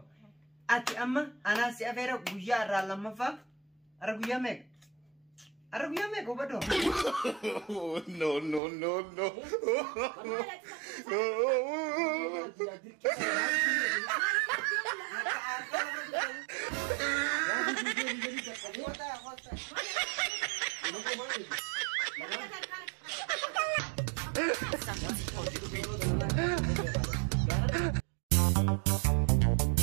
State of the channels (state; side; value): drops out; left; at 8.6 s